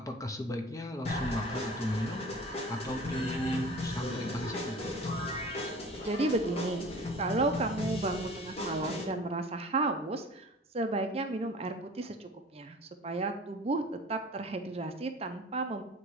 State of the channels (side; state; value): both; normal; correlation 0.43